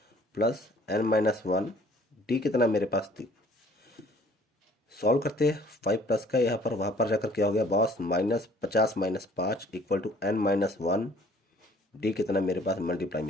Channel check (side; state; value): both; normal; correlation 0.55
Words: प्लस N-1 डी कितना मेरे पास 3। सॉल्व करते हैं 5 प्लस का यहाँ पर, वहाँ पर जाकर क्या हो गया boss, -50 - 5 equal to N-1 D कितना मेरे पास मल्टीप्लाई